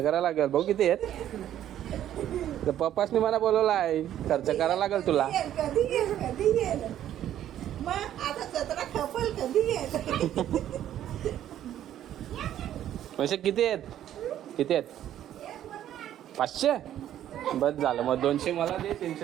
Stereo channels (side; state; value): left; quieter; 11.5 dB